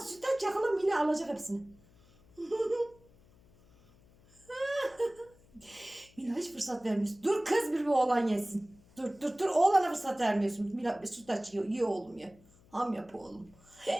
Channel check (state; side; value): noise; left; hum, 28 dB below the sound